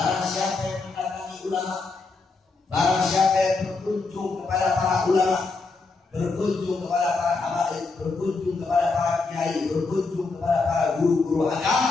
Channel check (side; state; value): right; quieter; 4.0 dB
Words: siapa yang mendatangi ulama, barang siapa yang berkunjung kepada para ulama, berkunjung kepada para habaib, berkunjung kepada para kiai, berkunjung kepada para guru-guru